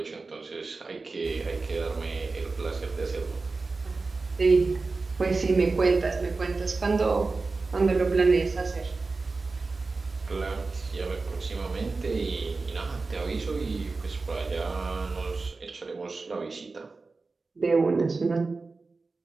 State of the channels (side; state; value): left; quieter; 3.9 dB